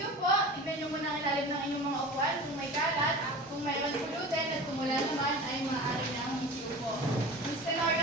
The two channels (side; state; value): both; normal; correlation 0.35